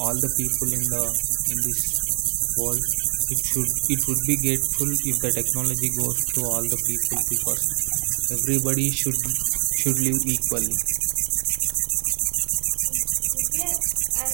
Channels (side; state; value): left; silent; digital silence